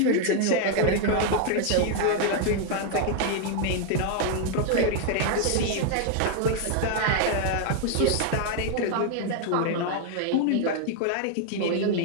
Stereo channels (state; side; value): different; both; correlation 0.00